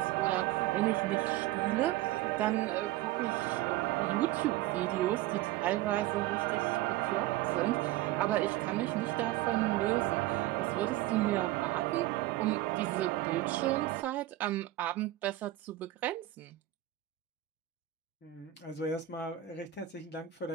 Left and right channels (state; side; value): quieter; left; 15.0 dB